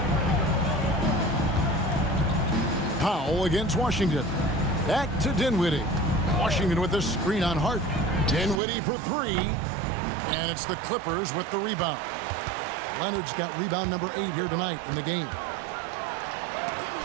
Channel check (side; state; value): left; drops out; at 8.6 s